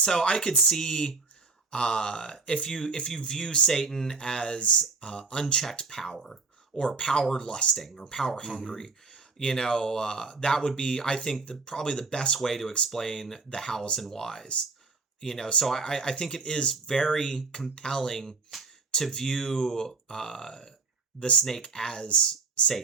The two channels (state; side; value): quieter; left; 4.3 dB